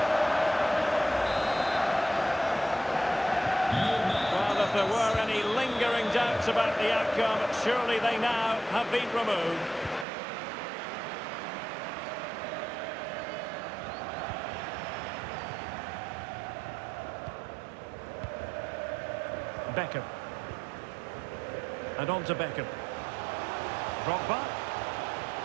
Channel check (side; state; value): left; drops out; at 10.1 s